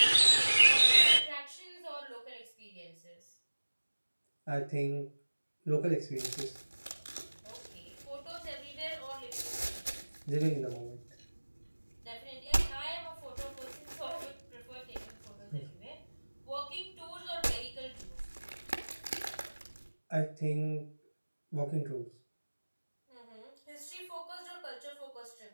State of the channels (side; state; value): both; inverted; correlation -1.00